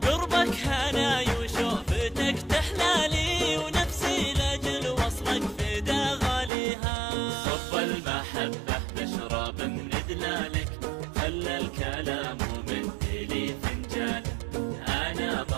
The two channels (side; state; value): left; drops out; at 6.5 s